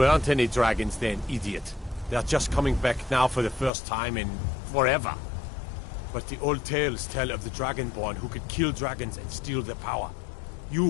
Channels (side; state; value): right; drops out; at 3.7 s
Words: any dragons then, idiot. They're just coming back now for the first time in forever. But the old tales tell of the Dragonborn who could kill dragons and steal their power.